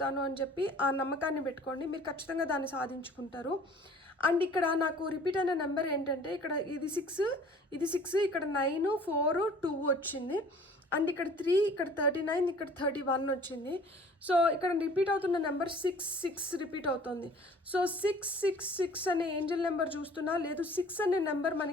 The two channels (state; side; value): normal; both; correlation 0.50